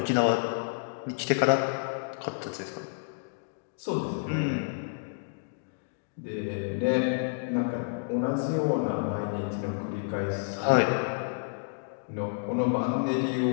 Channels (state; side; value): silent; right; digital silence